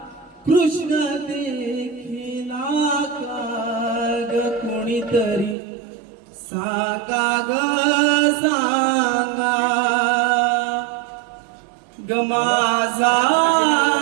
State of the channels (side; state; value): left; drops out; at 5.6 s